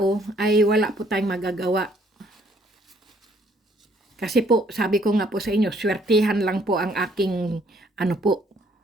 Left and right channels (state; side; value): normal; both; correlation 0.65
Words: ay wala po tayong magagawa. Kasi po, sabi ko nga po sa inyo, swertihan lang po ang aking, ano po,